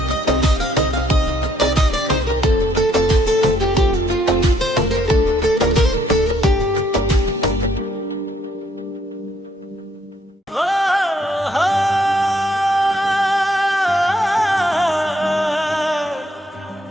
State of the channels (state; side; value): normal; both; correlation 0.68